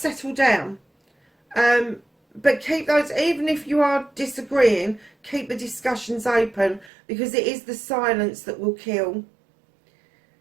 down. But keep those, even if you are disagreeing, keep the discussions open, because it is the silence that will kill.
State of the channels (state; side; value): drops out; left; at 6.9 s